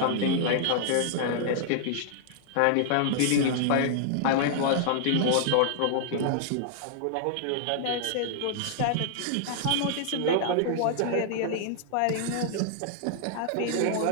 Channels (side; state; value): both; different; correlation -0.01